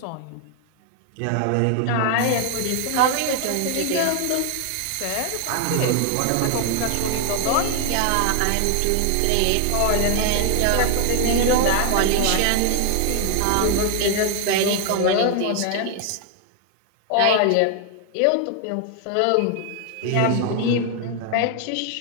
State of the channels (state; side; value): different; both; correlation 0.01